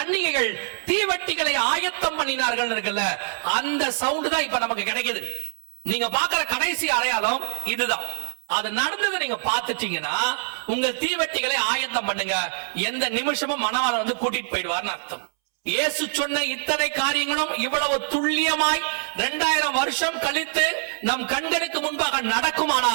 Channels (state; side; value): silent; left; 62 dB below the other